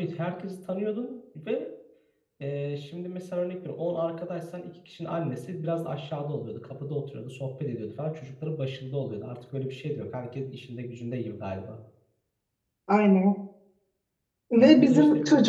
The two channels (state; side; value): identical; both; correlation 1.00